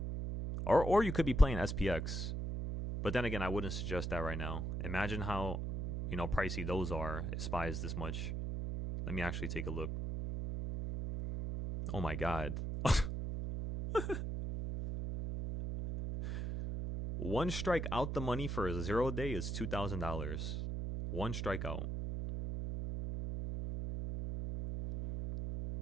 Or you could be playing SPX. But then again, I wouldn't suggest that right now. Imagine how, you know, pricey those are if SPY is this much. Let me actually take a look. Oh my god. One strike out the money for a 0 day is $2,000. One strikeout.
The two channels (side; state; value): right; noise; hum, 2 dB below the sound